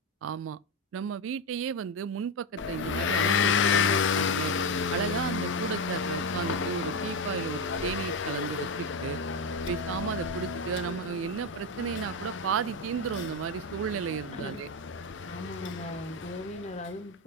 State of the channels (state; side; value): normal; both; correlation 0.12